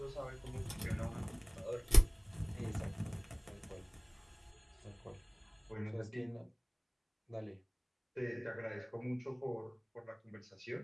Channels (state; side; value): identical; both; correlation 1.00